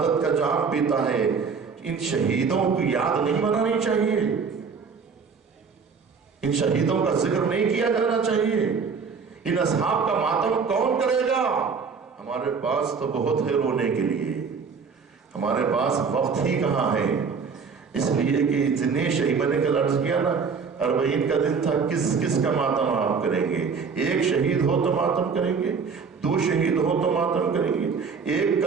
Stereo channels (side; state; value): left; quieter; 5.5 dB